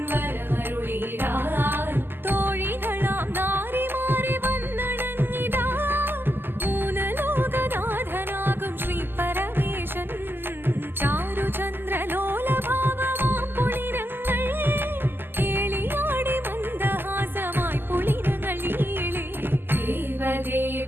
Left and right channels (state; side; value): late; left; 0.098 ms